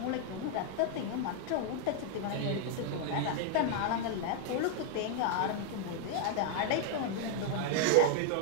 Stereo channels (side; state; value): both; different; correlation 0.00